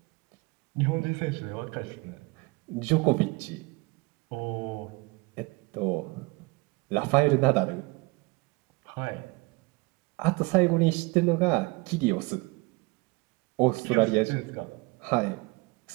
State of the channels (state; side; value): quieter; left; 25.5 dB